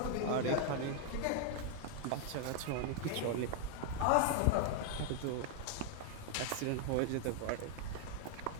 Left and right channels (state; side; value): different; both; correlation 0.00